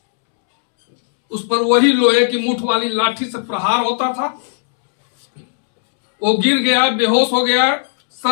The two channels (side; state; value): right; silent; 69 dB below the other